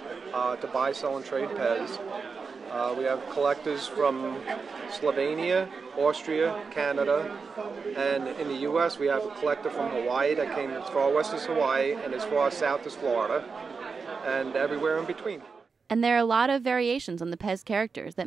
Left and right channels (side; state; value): left; quieter; 5.0 dB